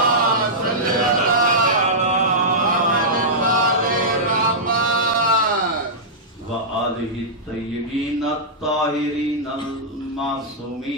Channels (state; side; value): normal; both; correlation -0.12